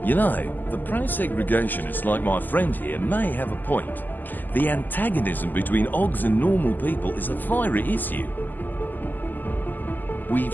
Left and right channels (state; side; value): late; right; 0.087 ms